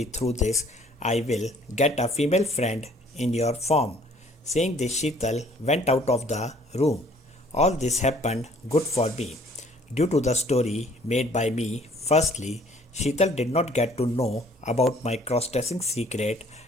through this I will get a female friend in your form. Saying this, Sheetal went out of the room. All this happened good for me. Due to the story made by me, firstly, Sheetal did not get to know about my cross-dressing secret,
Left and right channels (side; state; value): both; normal; correlation 0.58